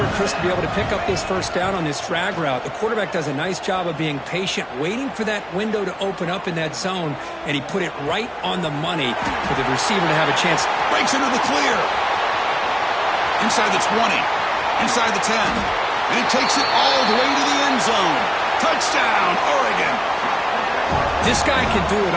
Chris, to be able to pick up this 1st down on this drag route. The quarterback does a nice job of being patient, waiting for that window to open up in that zone, and he put it right on the money for the receiver to have a chance. Breaks into the clear. Inside the 20. Inside the 10. And he takes it all the way to the end zone. Touchdown, Oregon. This guy can do it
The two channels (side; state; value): both; identical; correlation 1.00